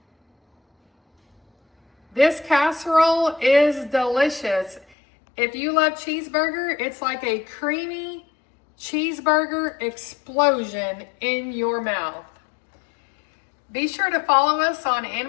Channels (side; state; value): right; drops out; at 4.9 s